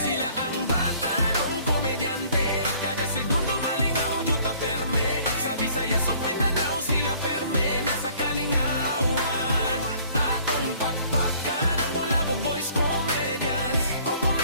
ang bata nung komedyante, kada segundo malingaw, juta perme. Sa Visayas ug Mindanao, sila perme nasa kalingawan. Atong pakpakan ang Bulabog Boys Comedians. Kung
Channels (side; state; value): both; inverted; correlation -0.56